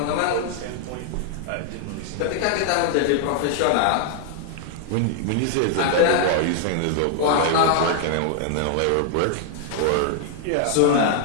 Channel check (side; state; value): both; different; correlation 0.00